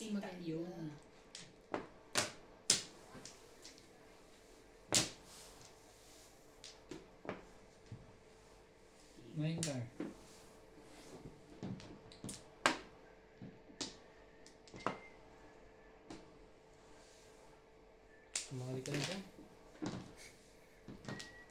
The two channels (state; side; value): identical; both; correlation 1.00